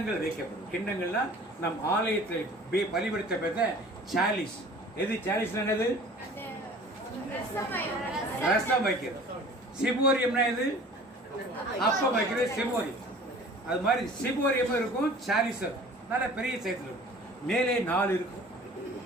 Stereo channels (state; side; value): normal; both; correlation 0.46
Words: வைக்கப்படும். கிண்ணங்கள்னா நம் ஆலயத்தில் பலிபடுத்த பெற்ற சாலிஸ். எது சாலிஸ்ல என்னது? ரசம் வைக்கிறது. சிபோரியம்னா எது? அப்பம் வைக்கிறது சிபோரியம். அது மாதிரி சிபோரியம் இருக்கும், சாலிஸ் நல்ல பெரிய சைஸ்ல இருக்கும். மேலே 4 இருக்கும்,